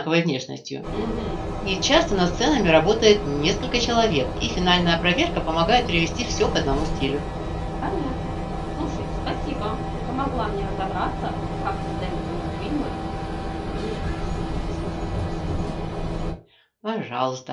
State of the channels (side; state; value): both; identical; correlation 1.00